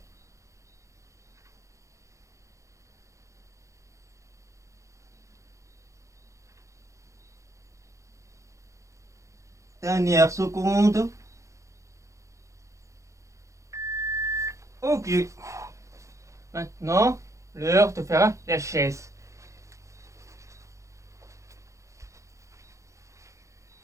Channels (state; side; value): late; left; 0.15 ms